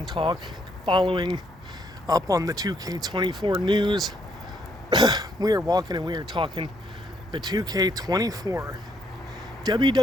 talk following up on the 2K24 news. We are walking and we are talking the 2K24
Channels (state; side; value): normal; both; correlation 0.72